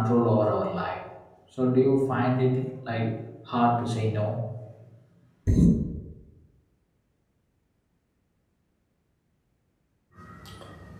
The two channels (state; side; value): identical; both; correlation 1.00